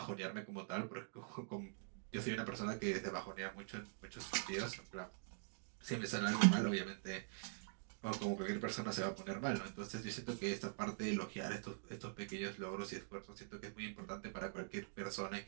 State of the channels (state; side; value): silent; left; digital silence